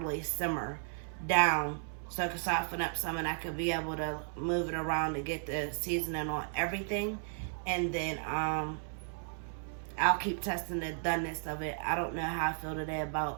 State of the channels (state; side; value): silent; left; 55 dB below the other